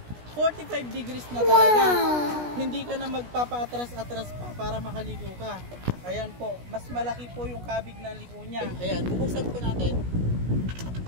45 degrees na talaga. Hindi ka na magpapaatras-atras pa para makaliko ka. Ayan po, mas malaki po yung kabig ng liko niya. Ayan, bubuksan po natin.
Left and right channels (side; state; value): left; late; 17 ms